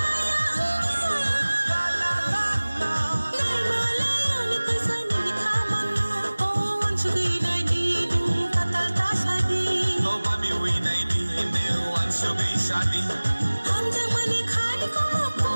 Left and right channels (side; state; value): both; inverted; correlation -1.00